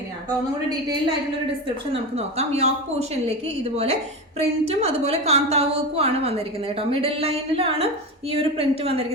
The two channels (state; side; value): normal; both; correlation 0.22